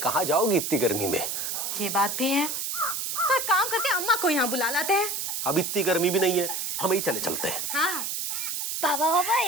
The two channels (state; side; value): noise; right; hiss, 2 dB below the sound